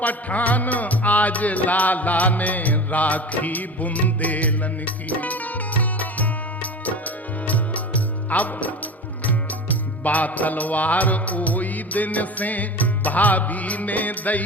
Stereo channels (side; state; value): both; normal; correlation 0.32